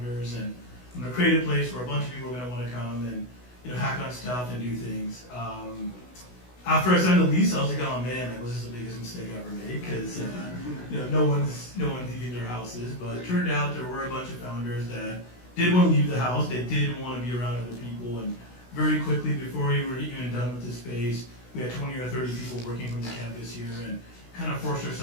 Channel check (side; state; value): right; late; 16 ms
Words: and I'm going to create a place where a bunch of people are going to want to come and hack on stuff and do things. After I signed the lease, I was like, oh man, that was just the biggest mistake I ever made, because no one's leaving their houses. But it turned out there were a bunch of founders that did want to leave the house. They did want to be around other people, and very quickly, before we were even done with the space, we had 20 or 30 people working from the campus here, and kind of forced